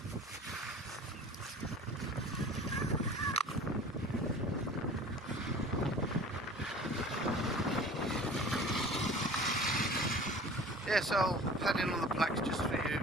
Yes, I'll pad in on the plaques just for you,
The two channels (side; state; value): both; normal; correlation 0.43